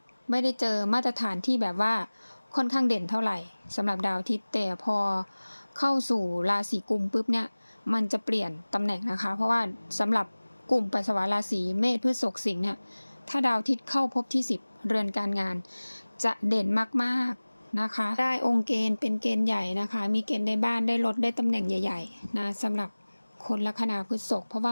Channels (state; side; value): inverted; both; correlation -1.00